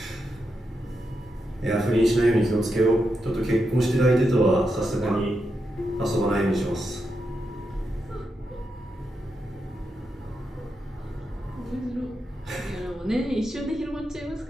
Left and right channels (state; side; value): normal; both; correlation 0.85